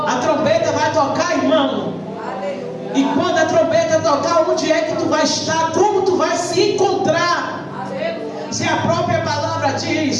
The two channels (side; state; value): both; identical; correlation 1.00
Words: A trombeta vai tocar, irmão. E quando a trombeta tocar, onde é que tu vai estar? Como tu vai se encontrar? Se a própria palavra